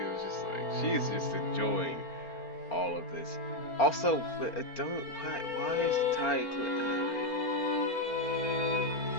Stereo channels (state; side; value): late; right; 4.4 ms